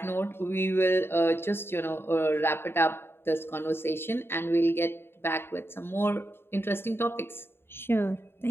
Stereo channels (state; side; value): late; right; 0.11 ms